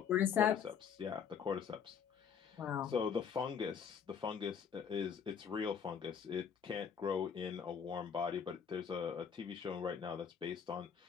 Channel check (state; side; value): quieter; right; 7.3 dB